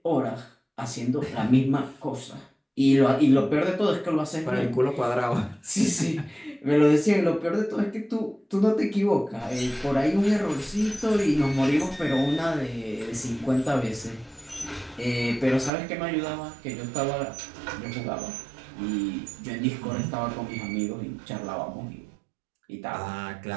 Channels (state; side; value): drops out; left; at 15.7 s